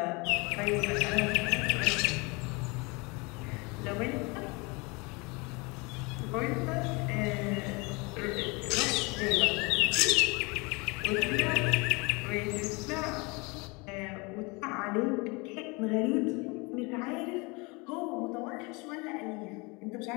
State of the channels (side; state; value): right; quieter; 27.8 dB